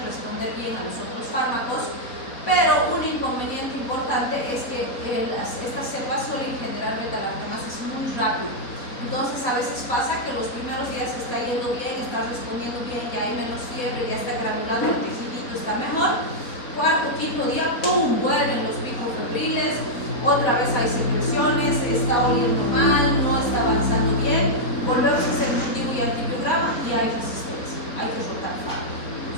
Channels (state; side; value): late; right; 4.2 ms